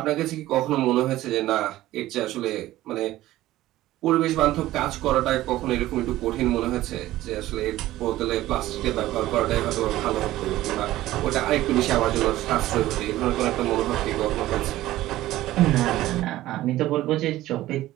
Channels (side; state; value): left; quieter; 15.5 dB